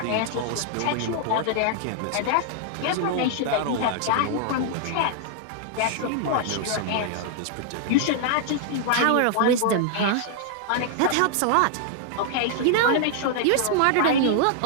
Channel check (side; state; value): both; different; correlation -0.01